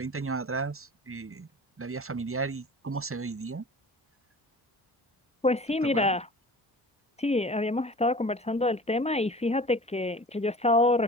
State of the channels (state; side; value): normal; both; correlation 0.41